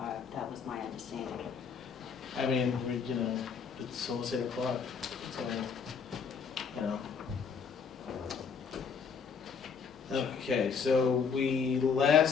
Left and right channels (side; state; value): right; quieter; 6.1 dB